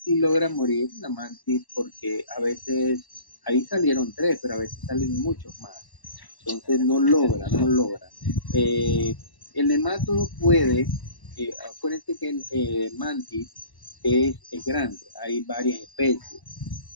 logra morir la mantis, porque a veces ahí salieron 3, pero a veces salen muchos más. Entonces no logra. El nemátodo puede, acuérdense que el mantis es grande, hay varias especies,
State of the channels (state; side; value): late; right; 1.1 ms